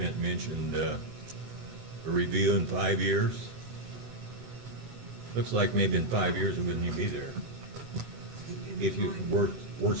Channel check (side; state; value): left; late; 25 ms